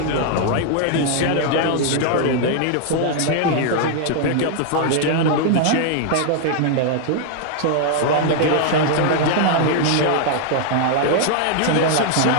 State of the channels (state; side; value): different; both; correlation 0.00